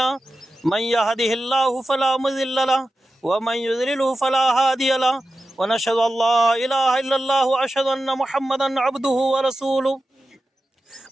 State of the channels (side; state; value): both; normal; correlation 0.93